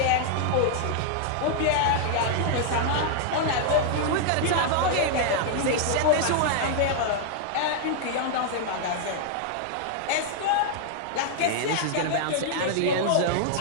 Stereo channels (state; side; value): different; both; correlation -0.01